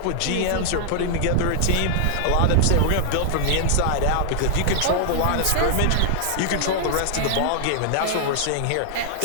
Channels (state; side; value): different; both; correlation -0.01